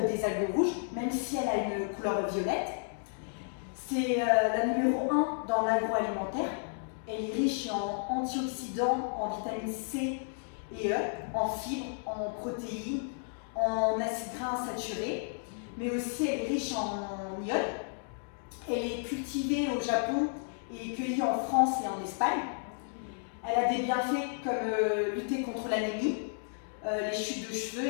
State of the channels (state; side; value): silent; right; digital silence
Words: des algues rouges, même si elle a une couleur violette. C'est la numéro 1 dans l'agroalimentaire. Elle est riche en antioxydants, en vitamine C et E, en fibres, en protéines, en acides gras insaturés, mais aussi elle est riche en iode. Elle est cultivée au Japon et cueillie en France et en Espagne. Elle a des bienfaits comme lutter contre l'anémie, les chutes de cheveux